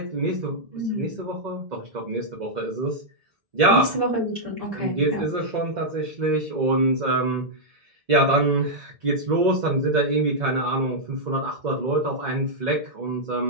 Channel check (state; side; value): late; left; 1.7 ms